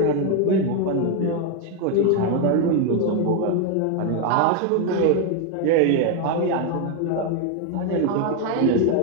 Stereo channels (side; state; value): both; different; correlation 0.01